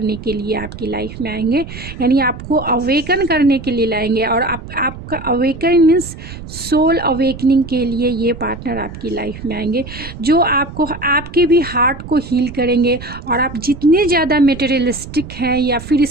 के लिए आपकी लाइफ में आएंगे, यानी आपको अवेकन करने के लिए लाएंगे। और आपका अवेकन मीन्स सोल अवेकनिंग के लिए ये पार्टनर आपकी लाइफ में आएंगे, जो आपको आपके भी हार्ट को हील करेंगे। और आप जितने ज़्यादा मटेरियलिस्टिक हैं या फिर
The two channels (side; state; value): right; noise; rumble, 12 dB below the sound